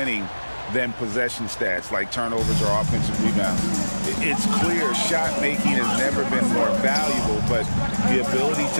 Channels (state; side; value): inverted; both; correlation -1.00